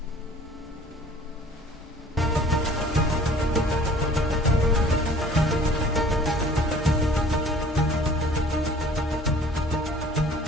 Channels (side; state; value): both; normal; correlation 0.50